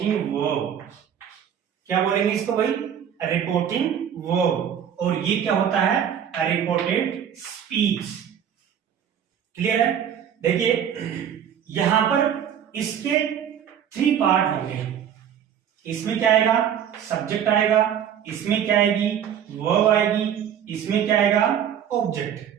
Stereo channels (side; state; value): left; quieter; 9.0 dB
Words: वर्ब। क्या बोलेंगे इसको भाई? Reporting verb. और ये क्या होता है? Reported speech. क्लियर है? देखिए यहां पर इसके 3 पार्ट होंगे। इसमें क्या आएगा? सब्जेक्ट आएगा, इसमें क्या आएगी? वर्ब आएगी, इसमें क्या आएगा? ऑब्जेक्ट।